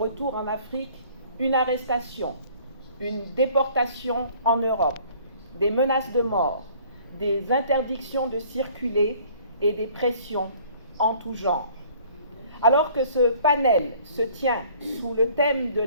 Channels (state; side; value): inverted; both; correlation -0.55